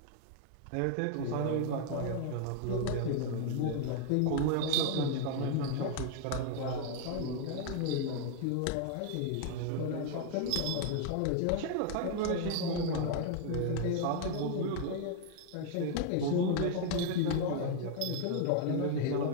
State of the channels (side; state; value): both; different; correlation 0.00